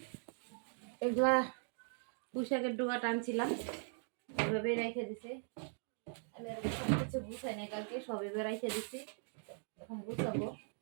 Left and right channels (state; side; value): silent; left; 51 dB below the other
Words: এগুলা পুঁইশাকের ডোকাটা আনছিলাম, এভাবেই রেখে দিছে। আমি আর সব কিছু গুছাই নাই, কালকে সব এভাবে রেখে দিছি। এখন গুছাবো,